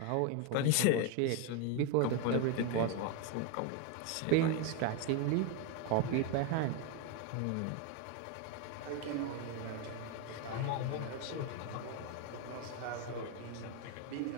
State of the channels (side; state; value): both; different; correlation 0.01